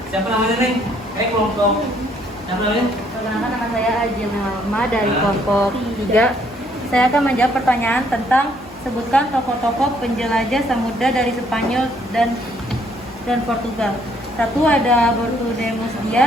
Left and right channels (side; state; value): both; normal; correlation 0.66